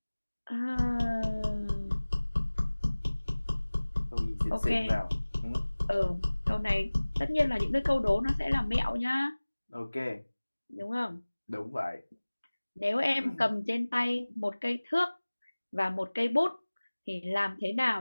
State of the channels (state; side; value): inverted; both; correlation -1.00